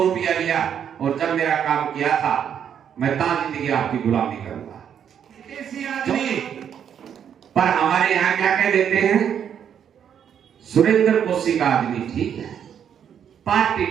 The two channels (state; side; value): quieter; left; 8.6 dB